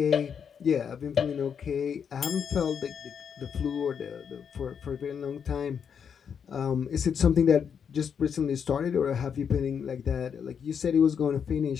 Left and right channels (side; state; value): right; quieter; 7.3 dB